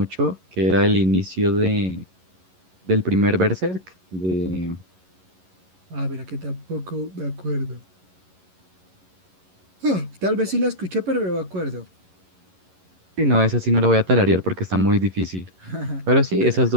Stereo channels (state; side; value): late; left; 11 ms